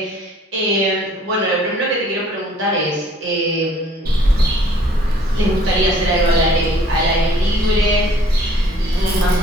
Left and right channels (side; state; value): both; normal; correlation 0.57